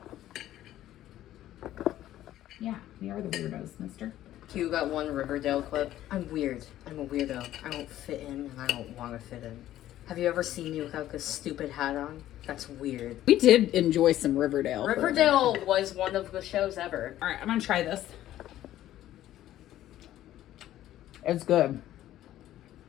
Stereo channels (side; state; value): right; quieter; 13.3 dB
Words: Yeah, we are the weirdos, mister. You got one Riverdale clip. I'm weird. I'm a weirdo. I don't fit in and I don't want to fit in. Have you ever seen me without this stupid hat on? That's weird. We did enjoy some Riverdale. Riverdale was one of the shows ever. All right, I'm going to try this. It's good.